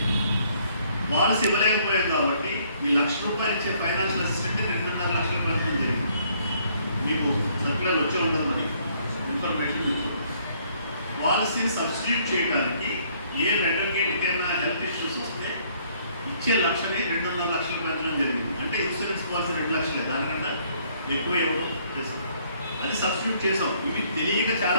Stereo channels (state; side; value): inverted; both; correlation -0.65